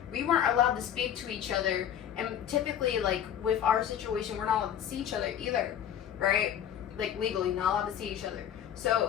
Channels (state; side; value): quieter; right; 9.9 dB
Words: we weren't allowed to speak to each other. And typically, like, with our situation, we're not allowed to see each other either, right? Like, legally, not allowed to see each other.